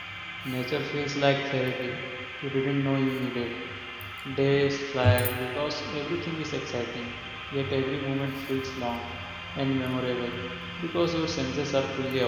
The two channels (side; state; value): both; identical; correlation 1.00